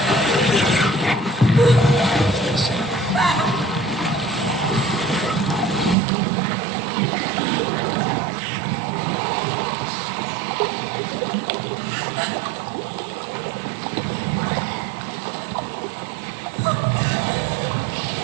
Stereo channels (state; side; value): drops out; left; at 6.0 s